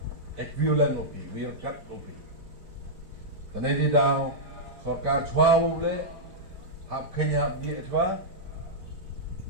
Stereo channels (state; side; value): late; left; 4.5 ms